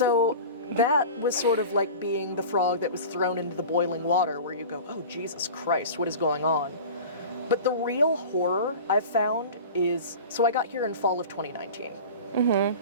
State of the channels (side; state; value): both; inverted; correlation -0.35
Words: that was sort of like being the frog that was thrown into the boiling water, where you go, oh, Jesus Christ, what is going on? But the real horror I've found is, so I got here in fall of 2019.